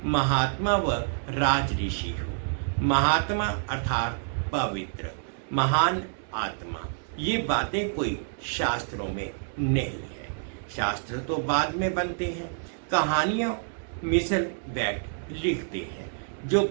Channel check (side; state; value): left; silent; digital silence